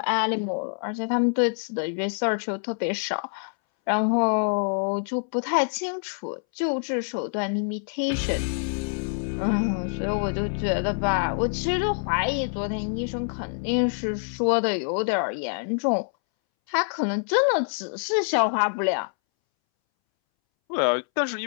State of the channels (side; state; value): right; silent; 61 dB below the other